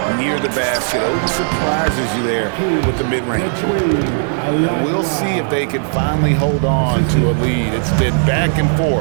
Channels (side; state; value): left; silent; digital silence